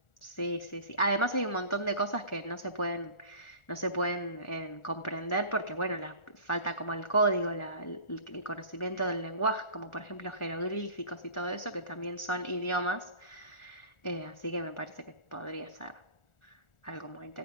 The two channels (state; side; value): late; right; 1.4 ms